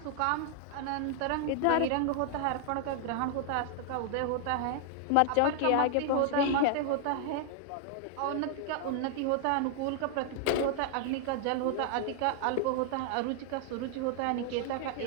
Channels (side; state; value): both; different; correlation 0.00